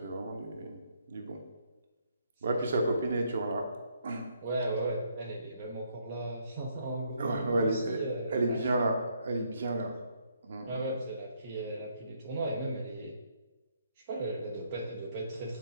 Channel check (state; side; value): inverted; both; correlation -0.71